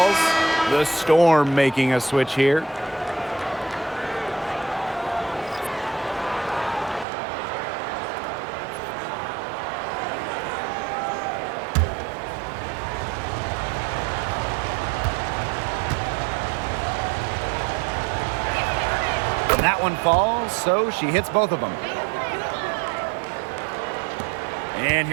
The Storm making a switch here. That one falls, so she hits both of them. And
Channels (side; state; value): left; drops out; at 7.1 s